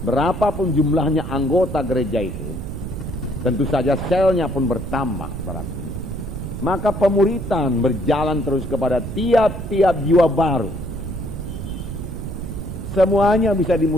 berapapun jumlahnya anggota gereja itu, tentu saja selnya pun bertambah, saudaraku. Maka pemuritan berjalan terus kepada tiap-tiap jiwa baru. Semuanya bisa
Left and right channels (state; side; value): noise; right; rumble, 7 dB below the sound